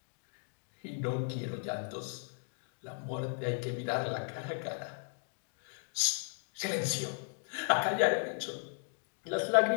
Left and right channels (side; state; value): right; silent; 54 dB below the other